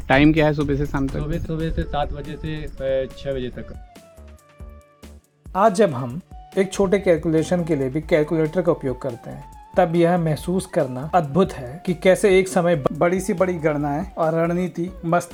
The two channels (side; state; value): both; identical; correlation 1.00